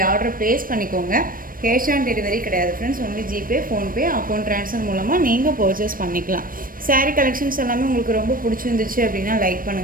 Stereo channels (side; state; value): left; late; 0.41 ms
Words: ஆர்டர் ப்ளேஸ் பண்ணிக்கோங்க. கேஷ் ஆன் டெலிவரி கிடையாது friends, only GPay, PhonePe, account transfer மூலமாக நீங்கள் பர்ச்சேஸ் பண்ணிக்கலாம். சாரீ கலெக்ஷன்ஸ் எல்லாமே உங்களுக்கு ரொம்ப பிடிச்சிருந்துச்சு அப்படின்னா லைக்